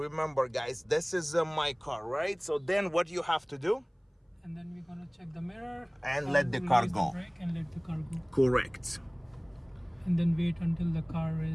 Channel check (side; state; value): both; identical; correlation 1.00